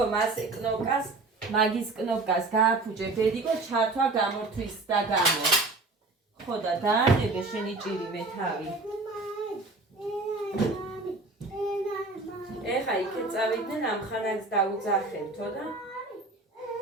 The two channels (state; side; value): quieter; left; 3.4 dB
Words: მასე კნოპკას, მაგის კნოპკას გააფუჭე ბედიკო ჩართვა გამორთვის და გამო. ხო და დაანებე შენი ჭირივე თავი. ეხა იქეთ წავიდნენ ამ ხანას დაუძახებთო და